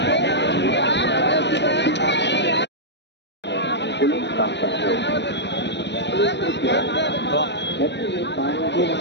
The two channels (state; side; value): late; right; 0.51 ms